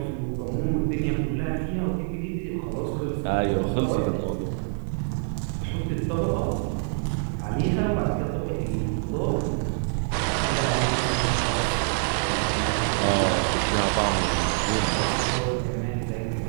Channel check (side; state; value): left; silent; digital silence